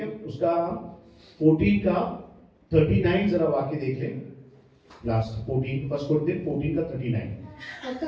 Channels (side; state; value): both; identical; correlation 1.00